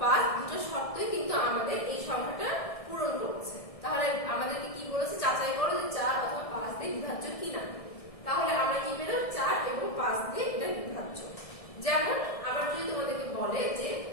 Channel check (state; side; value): late; right; 1.6 ms